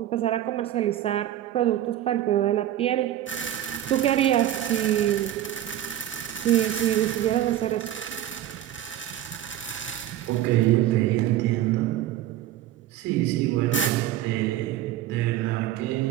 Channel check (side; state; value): left; quieter; 12.5 dB